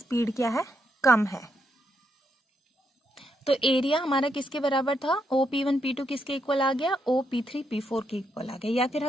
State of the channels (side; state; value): both; normal; correlation 0.79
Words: क्या है, कम है। तो एरिया हमारा किसके बराबर था, OP1P2 किसके इक्वल आ गया, OP3P4 के इक्वल आ गया। या फिर